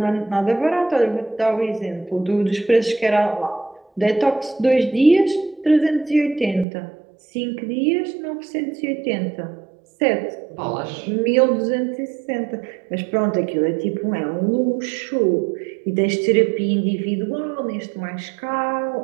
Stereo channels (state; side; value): drops out; left; at 6.7 s